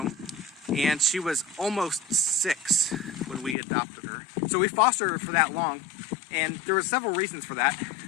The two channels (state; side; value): drops out; right; at 3.6 s